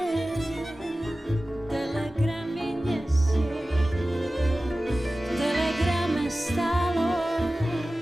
telegramy nesie. V telegrame stálo,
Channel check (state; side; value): normal; both; correlation 0.96